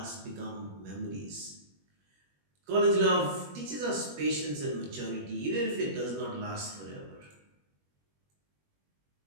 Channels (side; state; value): left; late; 21 ms